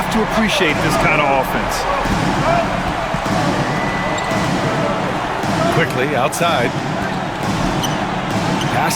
to appreciate this kind of offense. Quickly outside.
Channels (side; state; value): both; identical; correlation 1.00